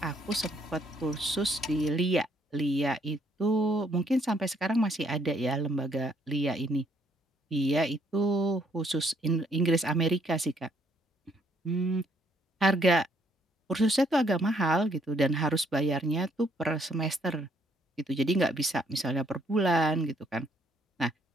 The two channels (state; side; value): normal; both; correlation 0.69